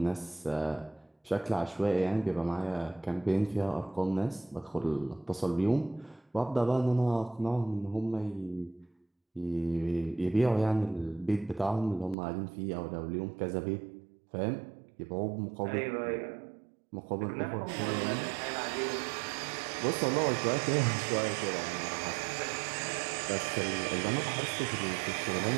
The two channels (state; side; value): drops out; left; at 12.2 s